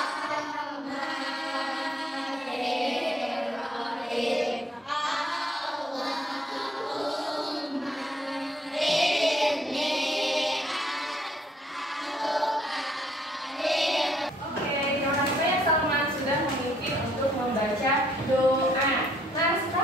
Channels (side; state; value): both; normal; correlation 0.68